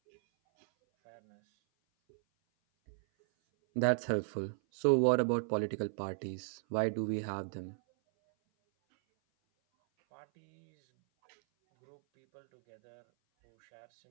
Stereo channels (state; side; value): silent; left; 54 dB below the other